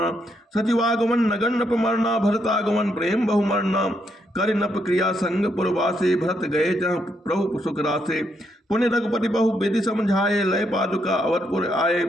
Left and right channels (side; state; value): both; normal; correlation 0.77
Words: सचिवागमन नगन नप मरना भरतागमन प्रेम बहुमरना। कर नप क्रिया संग पुरवासे भरत गए जहाँ प्रभु सुख रासे। पुण्य रघुपति बहु विधि समझाए लय पादुका अवधपुर आए।